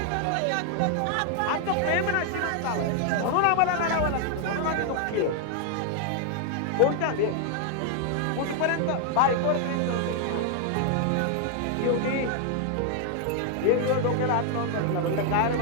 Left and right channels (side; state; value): both; different; correlation 0.00